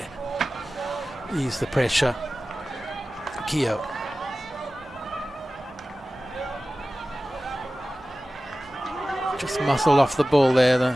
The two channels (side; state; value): both; normal; correlation 0.96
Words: Ease the pressure. Keogh. Just muscled off the ball there, the